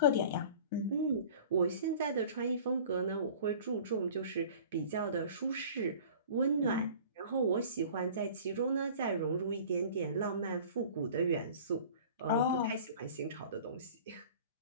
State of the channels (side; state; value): both; inverted; correlation -0.45